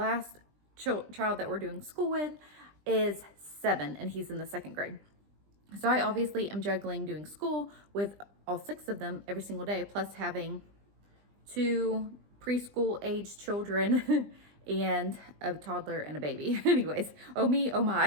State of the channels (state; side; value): late; left; 20 ms